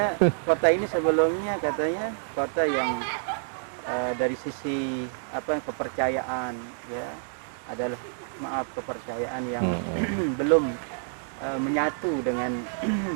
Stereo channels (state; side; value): silent; left; digital silence